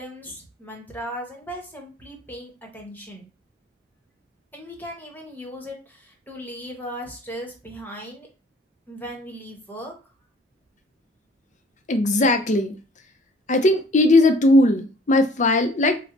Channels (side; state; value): both; normal; correlation 0.55